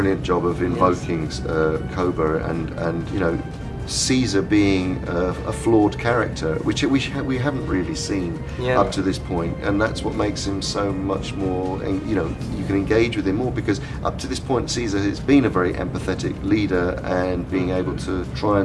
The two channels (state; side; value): identical; both; correlation 1.00